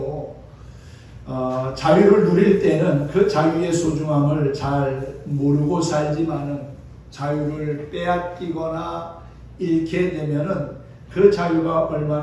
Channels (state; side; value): identical; both; correlation 1.00